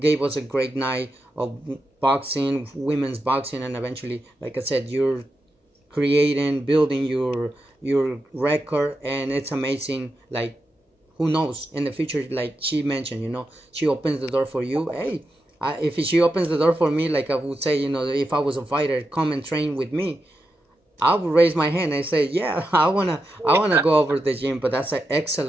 us a great night of boxing, women's boxing, and eventually, like I said, you're building your record, and it's amazing. Like, who knows, in the future, like she mentioned, you know, she opens the door for you. Hey, if she opens the door for me, like I would say, you know, if I was a fighter, come and train with me, I would raise my hand and say, yeah, I wanna go over the gym. But that's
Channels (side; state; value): both; normal; correlation 0.88